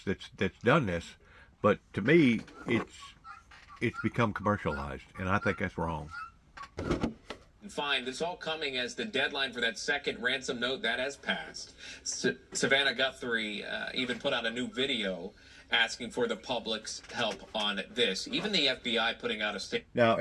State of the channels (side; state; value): both; identical; correlation 1.00